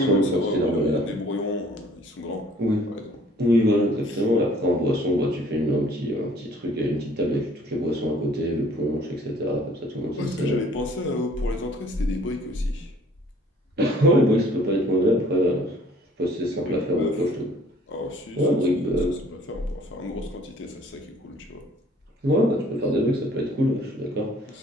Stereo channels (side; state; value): both; normal; correlation 0.56